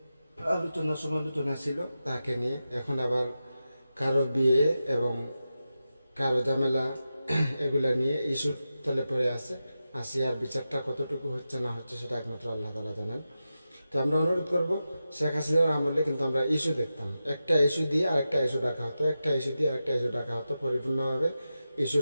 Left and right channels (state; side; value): inverted; both; correlation -0.91